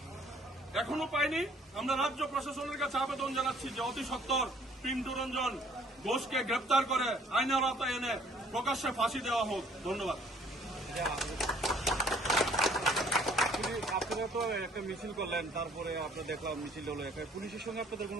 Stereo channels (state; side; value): normal; both; correlation 0.59